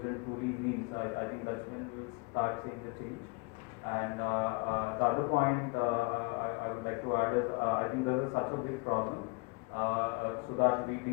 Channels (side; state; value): right; quieter; 29.8 dB